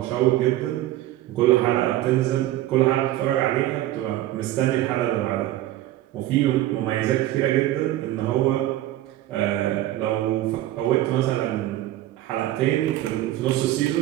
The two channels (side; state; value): left; quieter; 14.7 dB